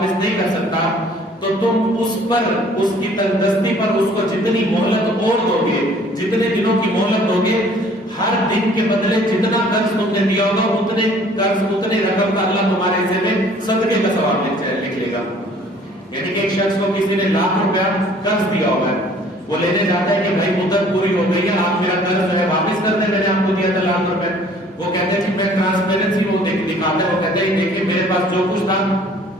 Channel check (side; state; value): both; normal; correlation 0.55